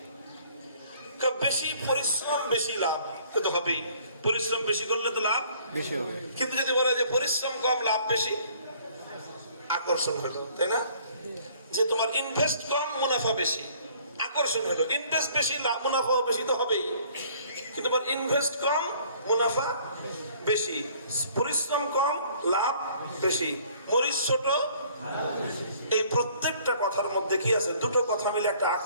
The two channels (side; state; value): both; inverted; correlation -0.57